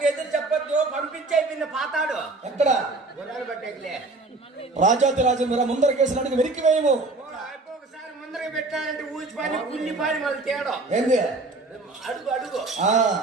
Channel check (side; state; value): left; quieter; 3.3 dB